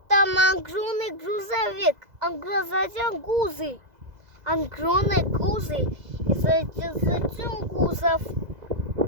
Там огромный грузовик, огромный гузы. Огромный гузы. И затем гузов.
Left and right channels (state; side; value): late; left; 2.0 ms